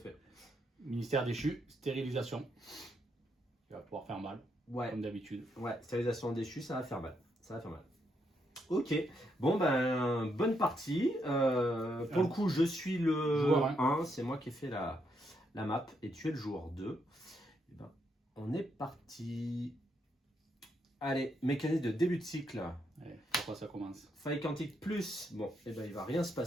Ministère déchu, stérilisation. Il va pouvoir faire mal, comme d'habitude. Ouais, stérilisation déchue, ça va faire mal. Ça va faire mal. Ok, bon ben, bonne partie. Pour le coup, je suis le joueur 1, c'est moi qui ai fait la map, et tu es le joueur 2. Et ben, on est parti. Allez, mécanisme de début de cycle. Allez, pourquoi ça commence? Faille quantique plus. Bon, et ben il va rien se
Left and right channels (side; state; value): both; normal; correlation 0.78